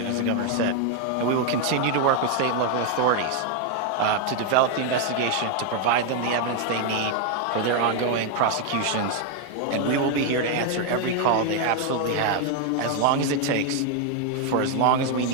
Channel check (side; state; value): both; different; correlation 0.01